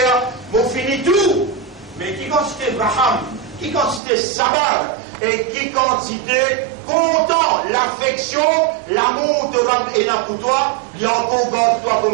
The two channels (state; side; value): drops out; left; at 4.0 s